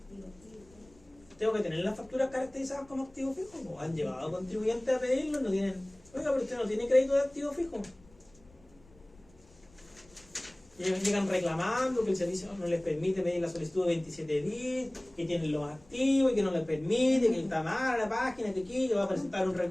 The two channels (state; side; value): noise; left; rumble, 27 dB below the sound